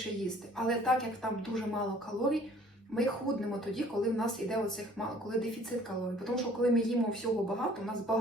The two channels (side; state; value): both; normal; correlation 0.55